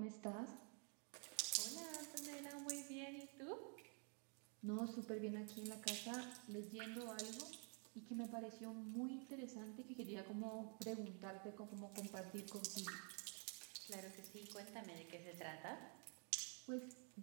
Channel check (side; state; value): left; quieter; 39.3 dB